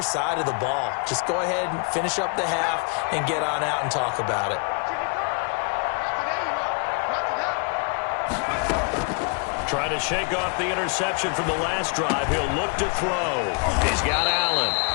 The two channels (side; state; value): right; quieter; 35.0 dB